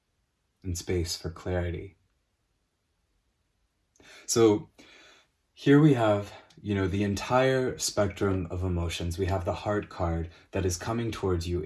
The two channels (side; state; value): both; identical; correlation 1.00